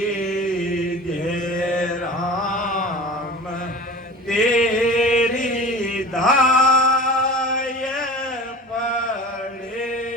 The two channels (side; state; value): both; normal; correlation 0.36